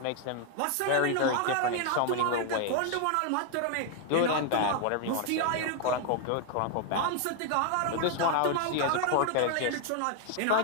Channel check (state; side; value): different; both; correlation 0.00